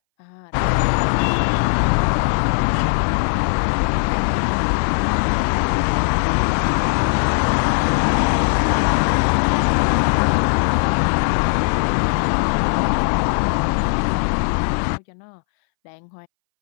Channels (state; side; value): silent; right; 64 dB below the other